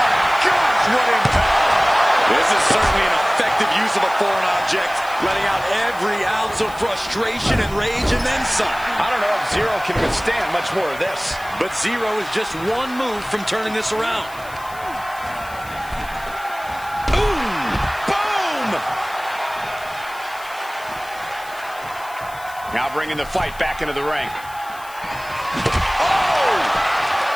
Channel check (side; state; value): left; noise; hiss, 20 dB below the sound